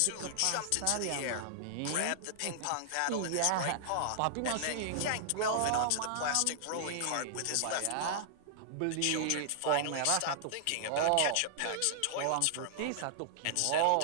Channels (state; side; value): different; both; correlation -0.01